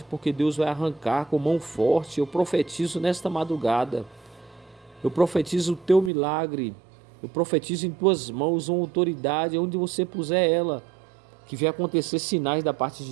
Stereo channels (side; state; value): left; drops out; at 6.1 s